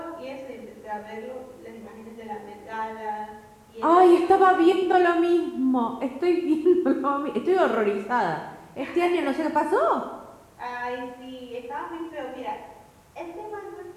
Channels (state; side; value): identical; both; correlation 1.00